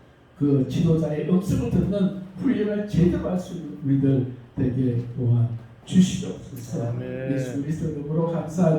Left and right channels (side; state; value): both; identical; correlation 1.00